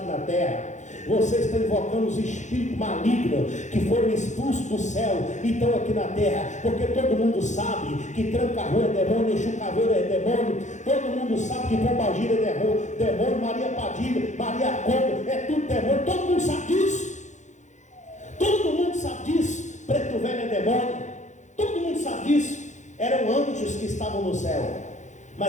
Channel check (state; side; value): late; right; 0.35 ms